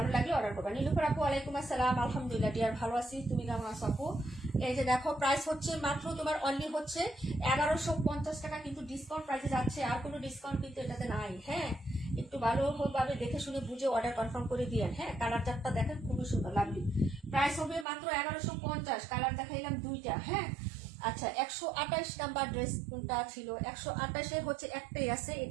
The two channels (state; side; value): drops out; left; at 17.9 s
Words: লাগলে অর্ডার করবা। নীলুফার আপু ওয়ালাইকুম আসসালাম, আলহামদুলিল্লাহ ডিয়ার ভালো আছি, তুমি কেমন আছো আপু? এই যে দেখো প্রাইস হচ্ছে মাত্র তোমার অনলি হচ্ছে 1150 টাকা, কিন্তু ডিসকাউন্ট প্রাইসে যাচ্ছে, আর কোনো ডিসকাউন্ট কিন্তু এটাতে নাই। হ্যাঁ একটু ভালোভাবে দেখে শুনে বুঝে অর্ডার কনফার্ম করে দিয়েন। হ্যাঁ কালার চারটা দেখেন খুবই সুন্দর লাভলি। প্রাইস হবে মাত্র 1150, কালার দেখাইলাম দুইটা। হ্যাঁ আচ্ছা 128 নাম্বার ড্রেস কোনটা ছিল? 128 হচ্ছে একটাই আছে,